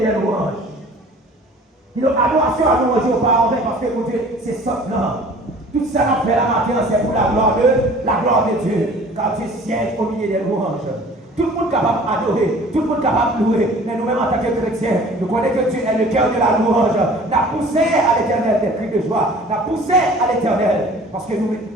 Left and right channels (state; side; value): normal; both; correlation 0.48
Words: des louanges. Il a adoration attention à nous rejoindre pas en vain parce que mon Dieu, c'est ça là. Tout ça qu'on fait la matin, c'est pour la gloire de Dieu. Car Dieu siège au milieu des louanges. Tout le monde est capable d'adorer, tout le monde est capable de louer, mais nous-mêmes en tant que chrétiens, nous connaissons que Dieu est le cœur de la louange. Nous avons poussé à l'éternel des cris de joie, nous avons poussé à l'éternel, parce que nous